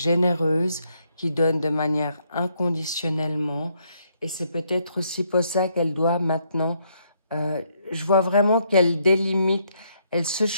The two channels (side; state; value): both; inverted; correlation -0.73